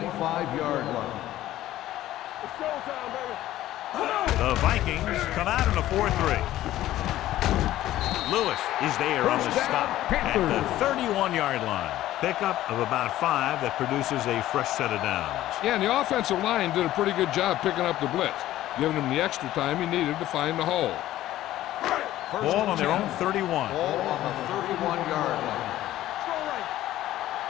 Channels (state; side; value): quieter; right; 14.3 dB